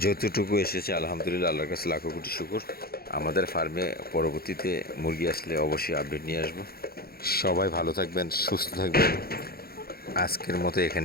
যতটুকু এসেছে আলহামদুলিল্লাহ, আল্লাহর কাছে লাখো কোটি শুকর। আমাদের ফার্মে পরবর্তীতে মুরগি আসলে অবশ্যই আপডেট নিয়ে আসবো। সবাই ভালো থাকবেন, সুস্থ থাকবেন। আজকের মতো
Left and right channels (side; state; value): right; late; 0.44 ms